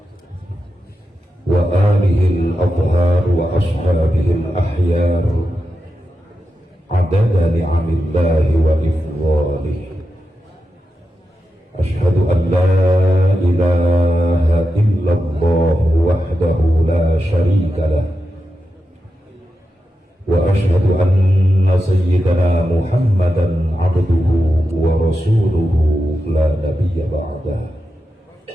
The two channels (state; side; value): normal; both; correlation 0.89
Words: wa alihil adhar wa ashabihil ahyar adada ni'amillahi wa ifdhalih. Ashhadu an la ilaha illallah wahdahu la sharika lah wa ashhadu anna sayyidana Muhammadan abduhu wa rasuluhu la nabiyya ba'dah.